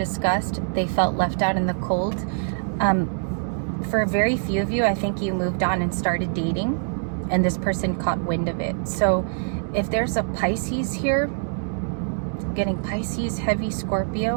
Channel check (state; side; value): silent; left; digital silence